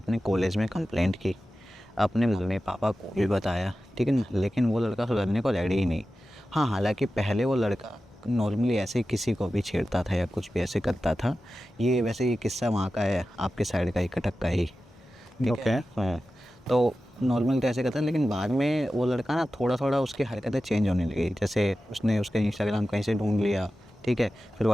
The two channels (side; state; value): both; normal; correlation 0.94